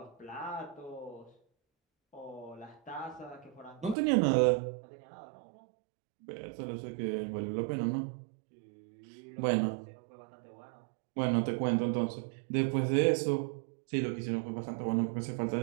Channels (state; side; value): drops out; left; at 4.0 s